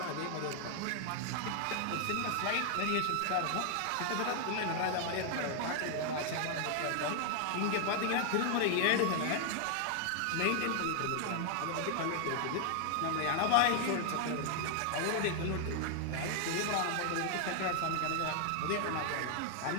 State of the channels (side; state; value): both; different; correlation 0.00